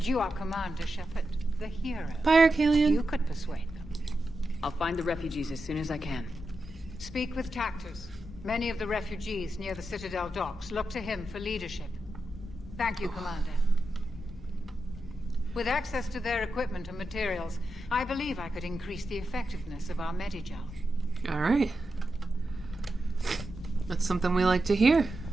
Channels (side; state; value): both; normal; correlation 0.89